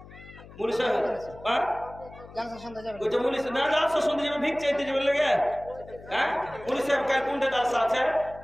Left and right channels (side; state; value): left; noise; hum, 19 dB below the sound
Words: পুলিশে হ্যাঁ জালসা শুনতে যাবে কইছে পুলিশ না জালসা শুনতে যাবে ভিক চাইতে যাবে লাগে হ্যাঁ পুলিশে কাল কোনটা জালসা আছে